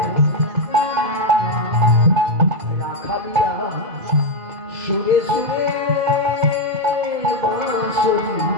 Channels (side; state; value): left; late; 2.5 ms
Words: রাখালিয়া সুরে সুরে বাঁশরি